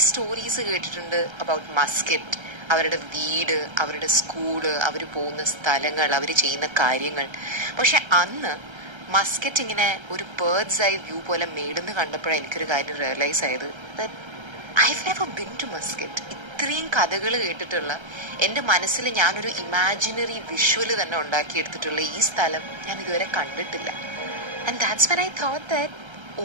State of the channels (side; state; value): left; late; 1.3 ms